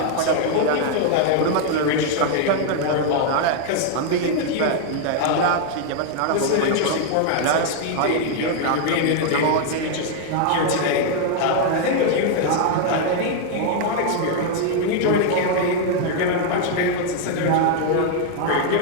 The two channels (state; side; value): different; both; correlation 0.00